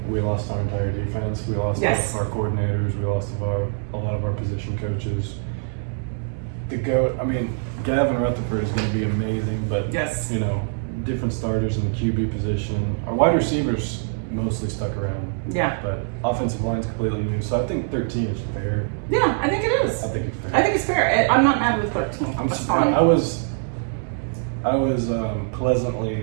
we lost our entire defense. We lost our coordinators. We lost a lot of our position coaches. The GOAT, Gavin Rutherford is going to be amazing, but different starters in the QB position. Our wide receivers mostly stuck around. Yeah. But offensive line's completely new, so I think 13 is fair. Yeah, I think it is. I think it's fair. I think it's fair. I'm not mad with 13. I'm That's surprised. fine. I was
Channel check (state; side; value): silent; left; digital silence